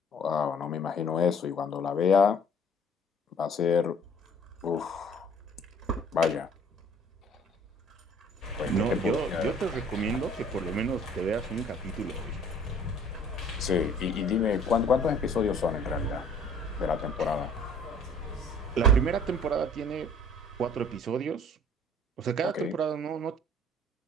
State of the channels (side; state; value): both; normal; correlation 0.53